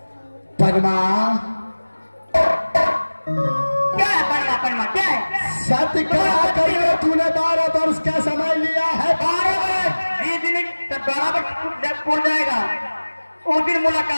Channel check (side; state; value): both; inverted; correlation -1.00